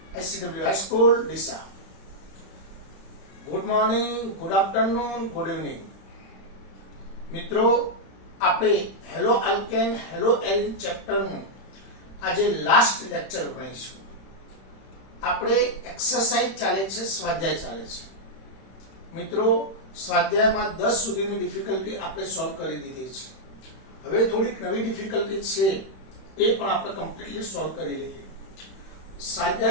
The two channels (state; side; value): late; right; 31 ms